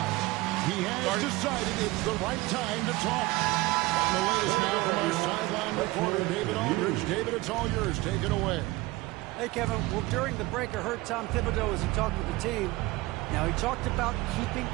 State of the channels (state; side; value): quieter; left; 20.5 dB